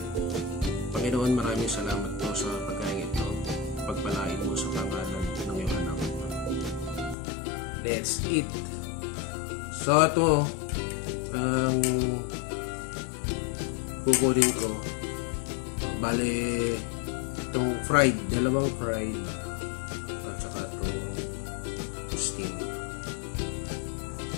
Panginoon, maraming salamat po sa pagkain ito. Pagpalain mo sa pangalan ng iyong anak. Let's eat. So ito ang kukunin ko. Bale, itong fried, dalawang fried at saka itong steam.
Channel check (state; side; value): drops out; right; at 7.2 s